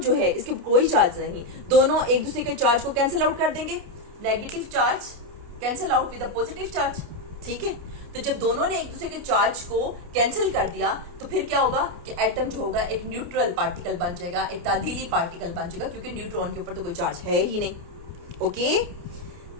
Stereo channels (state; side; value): late; left; 29 ms